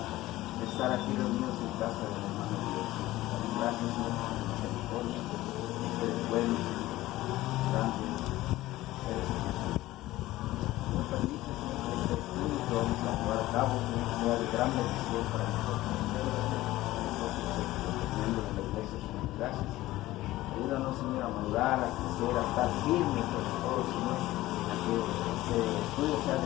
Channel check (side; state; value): right; quieter; 16.8 dB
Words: estar aquí reunidos en casa del hermano Dios. Gracias, Señor, por tu misericordia. Eres bueno, grande, eres Jesús. Nos permite, Señor, que este estudio que vamos a llevar a cabo, Señor, sea de gran bendición para nosotros. Teniendo en la iglesia, Señor, gracias. Ayúdanos, Señor, a madurar, a crecer, a estar firmes sobre todo, Señor, a que este estudio sea